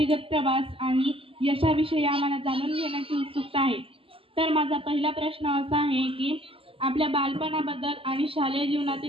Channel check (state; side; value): late; left; 0.26 ms